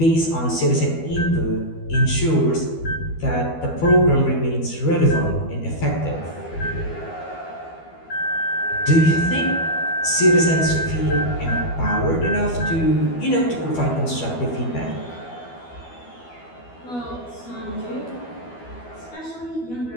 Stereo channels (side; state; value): right; late; 12 ms